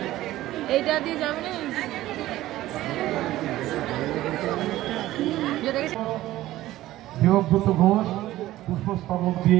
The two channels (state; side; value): quieter; left; 15.5 dB